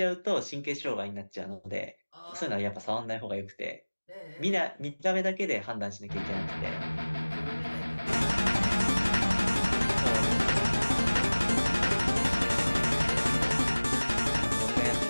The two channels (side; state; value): both; inverted; correlation -1.00